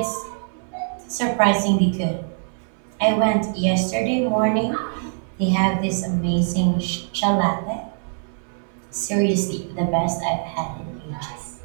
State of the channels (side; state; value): left; silent; 63 dB below the other